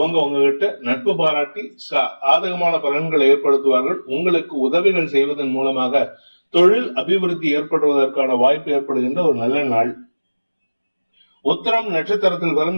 உங்ககிட்ட நட்பு பாராட்டி சாதகமான பலன்களை ஏற்படுத்துவார்கள். உங்களுக்கு உதவிகள் செய்வதன் மூலமாக தொழில் அபிவிருத்தி ஏற்படுவதற்கான வாய்ப்பு ஏற்படுகின்ற ஒரு நல்ல நாள். உத்திரம் நட்சத்திரத்தில்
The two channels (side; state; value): both; inverted; correlation -1.00